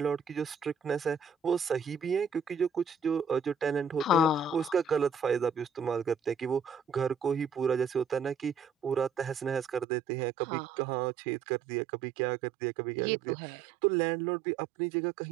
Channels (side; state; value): left; drops out; at 9.9 s